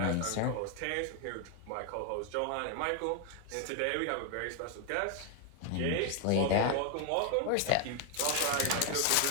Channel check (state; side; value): different; both; correlation 0.00